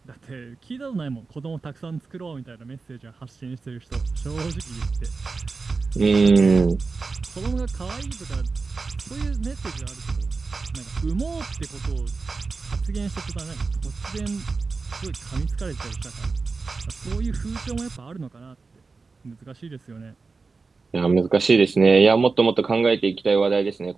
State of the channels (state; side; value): quieter; left; 4.3 dB